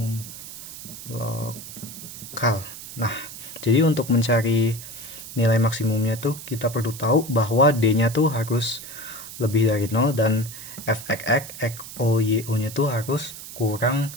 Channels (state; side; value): noise; right; hiss, 12 dB below the sound